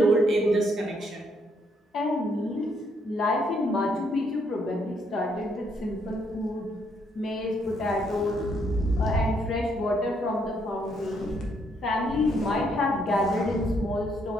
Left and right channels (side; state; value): both; normal; correlation 0.72